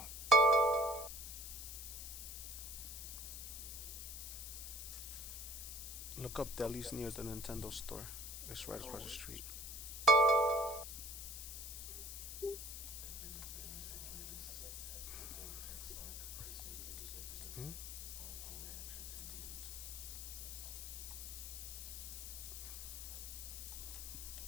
Look up delis near the Nintendo store. It's right across the street. Hmm?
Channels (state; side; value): noise; left; hiss, 7 dB below the sound